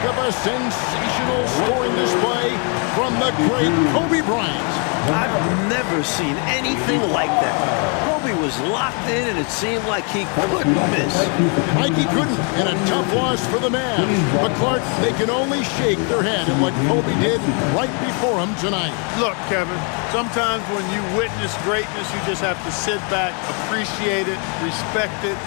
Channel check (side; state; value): right; quieter; 37.6 dB